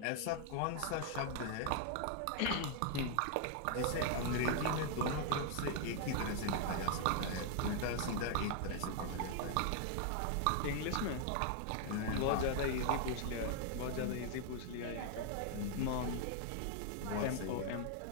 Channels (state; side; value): different; both; correlation 0.00